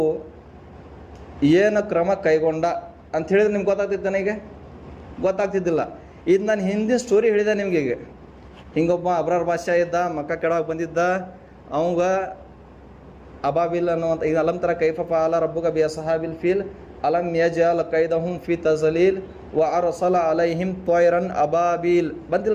ಏನು ಕ್ರಮ ಕೈಗೊಂಡ ಅಂತ ಹೇಳಿದ್ರೆ ನಿಮ್ಗೆ ಗೊತ್ತಾಗ್ತಿತ್ತು. ನನಗೆ ಗೊತ್ತಾಗ್ತಿದ್ದಿಲ್ಲ. ಇದು ನಾನು ಹಿಂದಿನ ಸ್ಟೋರಿ ಹೇಳಿದೆ ನಿಮಗೆ. ಈಗ ಹಿಂಗೊಬ್ಬ ಅಬ್ರಾರ್ ಬಾದ್ಶಾ ಇದ್ದ, ಮಕ್ಕ ಕೆಳಗೆ ಬಂದಿದ್ದ. ಅವಂಗ ಅಬಾಬಿಲ್ ಅನ್ನುವಂಥ ಈಗ ಅಲಂತರ ಕೈಫ ಫಾಲ ರಬ್ಬುಕ ಬಿ ಸಹಾಬಿಲ್ ಫೀಲ್ ಅಲಂ ಯಜಅಲ್ ಕೈದಹುಂ ಫಿ ತಜಲೀಲ್ ವ ಅರ್ಸಲ ಅಲೈಹಿಂ ತ್ವಯ್ರನ್ ಅಬಾಬಿಲ್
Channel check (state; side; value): identical; both; correlation 1.00